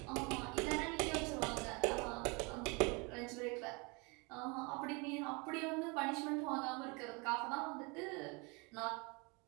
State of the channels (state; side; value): quieter; left; 29.7 dB